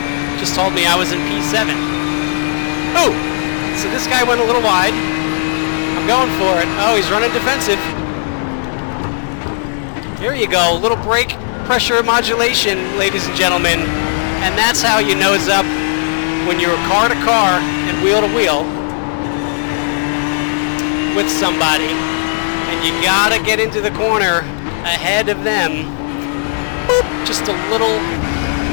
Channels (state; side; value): silent; right; 56 dB below the other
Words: Just told me I was in P7. Oh! So this guy went a little wide. I'm going for it. Oh, he's running defensive. Here you go. Little brake pressure modulation, ladies and gentlemen, and that's how you nose up when you're car to car and wheel to wheel with somebody, and you gotta get into the corner ahead of them. Boop, just a little